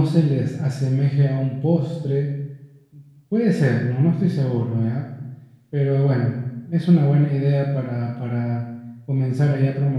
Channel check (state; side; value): identical; both; correlation 1.00